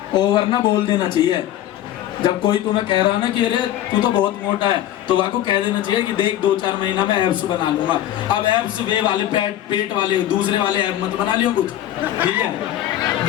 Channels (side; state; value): right; quieter; 12.6 dB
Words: ओवर ना बोल देना चाहिए। जब कोई तुम्हें कह रहा ना कि अरे तू तो बहुत मोटा है, तो वह को कह देना चाहिए कि देख 2-4 महीना में एब्स बना लूंगा। अब एब्स वे वाले पेट वाले दूसरे वाले एब मत बना लियो कुछ, ठीक है,